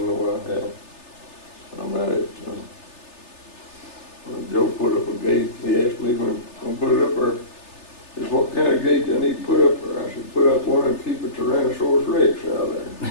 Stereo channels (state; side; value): late; right; 3.3 ms